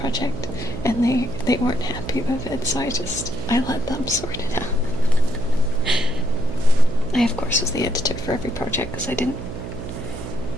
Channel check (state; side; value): noise; right; hum, 9 dB below the sound